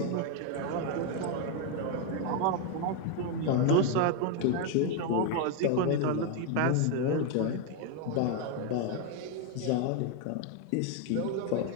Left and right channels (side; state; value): both; different; correlation 0.01